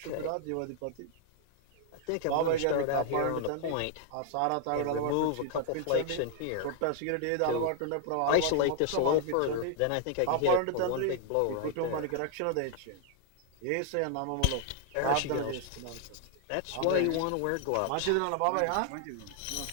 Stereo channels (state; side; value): different; both; correlation 0.00